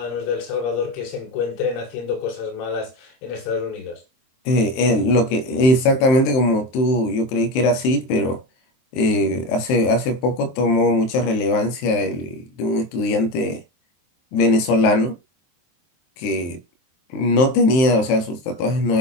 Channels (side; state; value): right; late; 23 ms